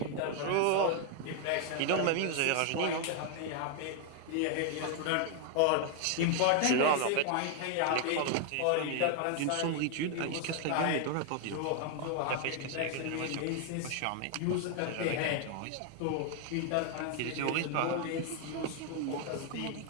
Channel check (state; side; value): different; both; correlation 0.00